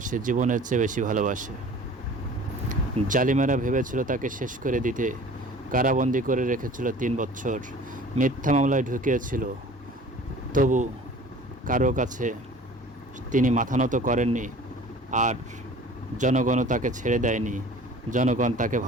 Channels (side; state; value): both; normal; correlation 0.45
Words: জীবনের চেয়ে বেশি ভালোবাসে। জালিমেরা ভেবেছিল তাকে শেষ করে দিতে, কারাবন্দি করে রেখেছিল 3 বছর, মিথ্যা মামলায় ঢুকিয়েছিল। তবু কারো কাছে তিনি মাথা নত করেননি, আর জনগণও তাকে ছেড়ে দেয়নি। জনগণ তাকে